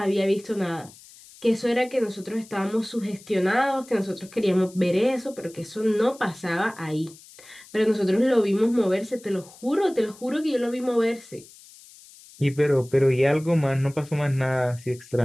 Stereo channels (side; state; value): left; noise; hiss, 22 dB below the sound